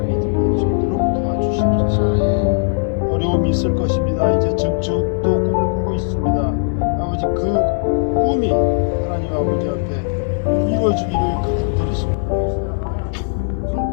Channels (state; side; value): silent; right; digital silence